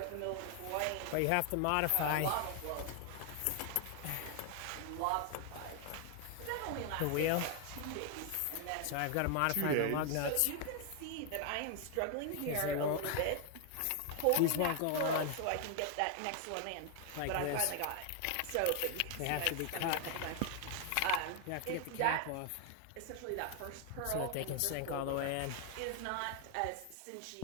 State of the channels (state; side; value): different; both; correlation 0.00